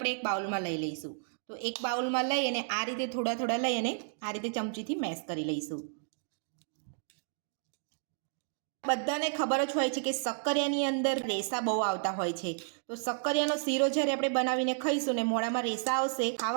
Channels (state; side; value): silent; left; digital silence